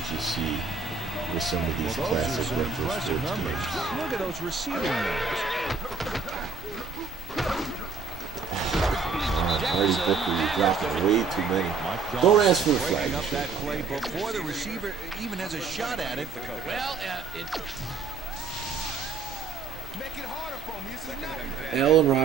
you see with some of these classic retro sports games. Look at those receiving moves. Marty Booker, you're dropping way too many. Don't ask for the flag. That play before the receiver even has a shot at it. Well, Allen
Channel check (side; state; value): left; quieter; 4.9 dB